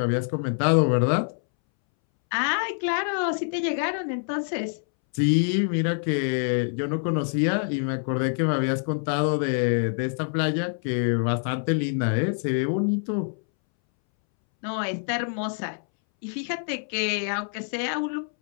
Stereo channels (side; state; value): right; silent; 61 dB below the other